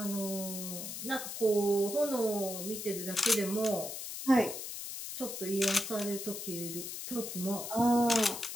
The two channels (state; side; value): noise; left; hiss, 7 dB below the sound